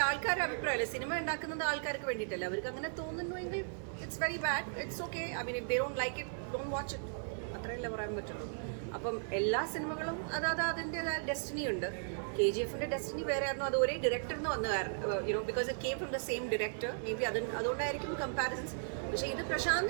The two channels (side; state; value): left; silent; 54 dB below the other